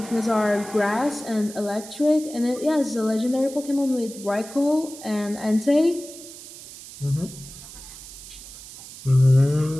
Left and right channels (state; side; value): noise; right; hiss, 15 dB below the sound